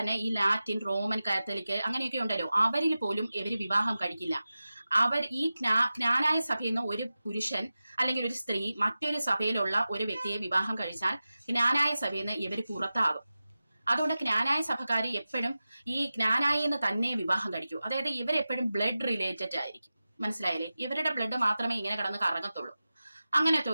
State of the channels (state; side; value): inverted; both; correlation -0.95